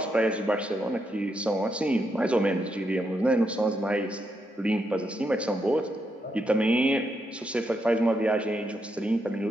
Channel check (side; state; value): both; normal; correlation 0.81